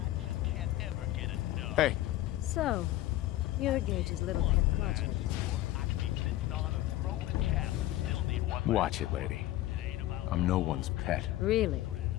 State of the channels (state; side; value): quieter; right; 15.2 dB